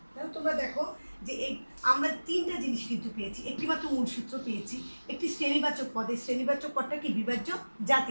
তাহলে তোমরা দেখো যে এই আমরা তিনটা জিনিস কিন্তু পেয়েছি, একটিমাত্র মূল সূত্র পেয়েছি, একটি শ্রেণীবাচক পদ, এই শ্রেণীবাচক পদটা কি বিভাজ্য জাতি,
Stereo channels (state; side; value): inverted; both; correlation -1.00